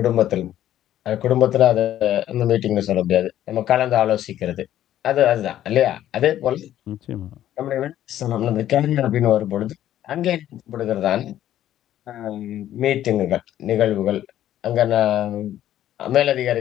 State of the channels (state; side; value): quieter; right; 12.2 dB